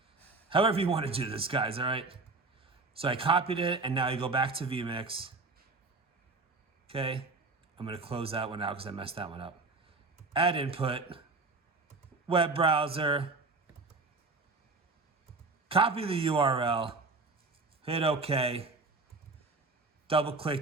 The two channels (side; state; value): left; quieter; 3.7 dB